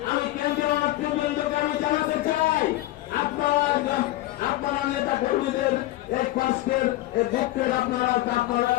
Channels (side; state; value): right; quieter; 16.8 dB